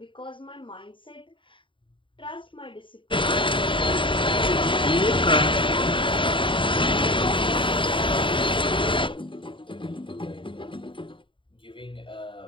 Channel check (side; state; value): right; late; 0.24 ms